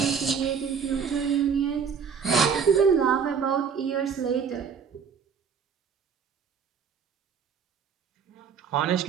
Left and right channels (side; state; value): left; quieter; 6.5 dB